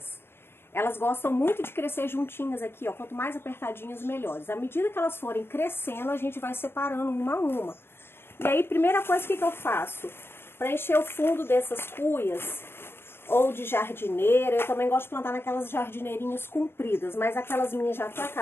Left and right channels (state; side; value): late; right; 0.11 ms